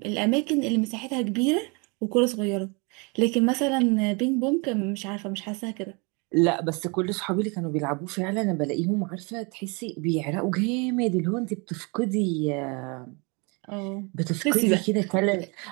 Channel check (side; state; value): left; quieter; 30.8 dB